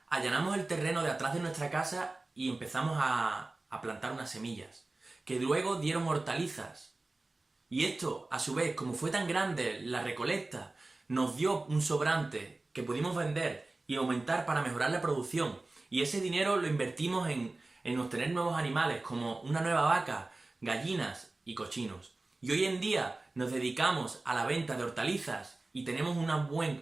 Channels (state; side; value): quieter; left; 3.1 dB